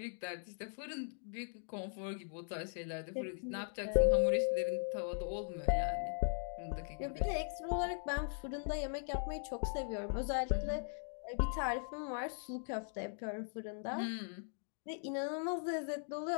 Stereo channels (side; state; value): right; silent; digital silence